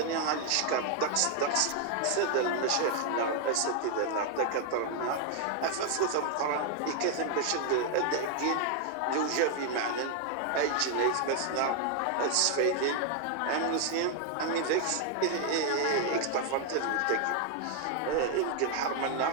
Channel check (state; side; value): different; both; correlation 0.00